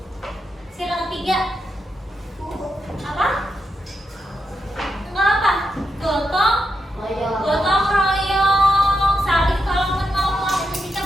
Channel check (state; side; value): normal; both; correlation 0.85